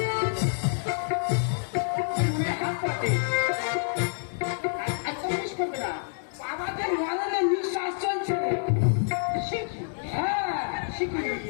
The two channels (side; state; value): right; silent; 60 dB below the other